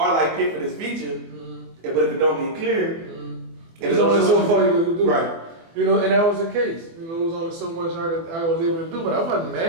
like pick for this feature, but if it don't get clear, it's only so far you can do. Right. You know, and that was the case. You know, it was only so much I was able to do, but I wasn't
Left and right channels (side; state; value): left; late; 24 ms